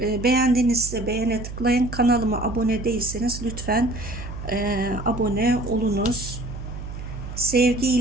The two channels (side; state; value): right; noise; hum, 9 dB below the sound